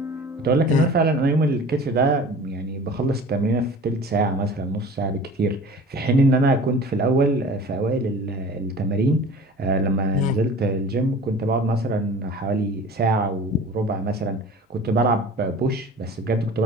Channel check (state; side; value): normal; both; correlation 0.42